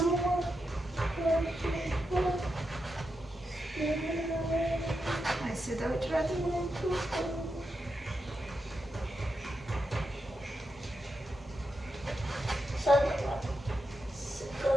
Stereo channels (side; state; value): both; normal; correlation 0.86